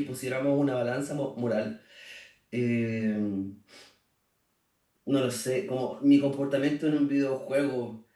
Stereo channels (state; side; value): identical; both; correlation 1.00